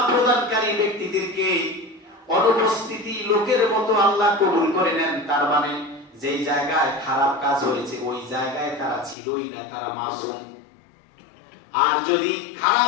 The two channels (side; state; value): right; drops out; at 9.2 s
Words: প্রদানকারী ব্যক্তিদেরকে অনুপস্থিতি লোকের মতো আল্লাহ কবুল করে নেন। তার মানে যেই জায়গায় খারাপ কাজ হয়েছে ওই জায়গায় তারা ছিলই না, তারা মাসুম। আর যদি